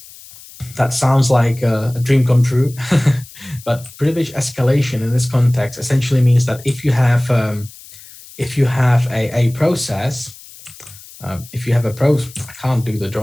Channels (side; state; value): left; noise; hiss, 20 dB below the sound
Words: That sounds like a dream come true, but privilege escalation in this context essentially means that if you have a process, I can't do the